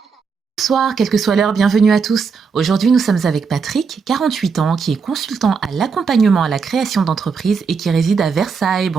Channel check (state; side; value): quieter; left; 5.5 dB